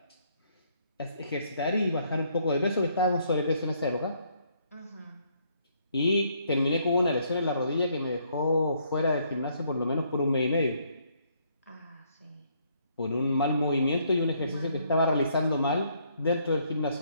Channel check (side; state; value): both; inverted; correlation -0.69